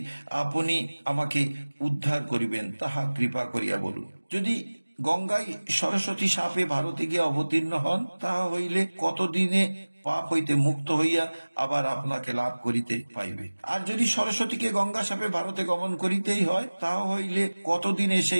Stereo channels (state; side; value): inverted; both; correlation -1.00